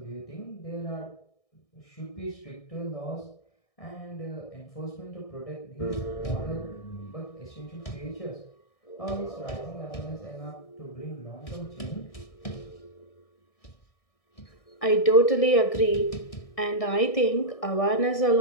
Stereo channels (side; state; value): right; late; 1.6 ms